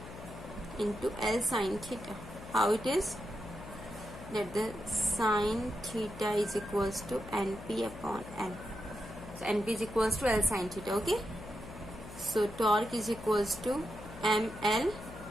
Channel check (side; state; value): left; noise; hum, 14 dB below the sound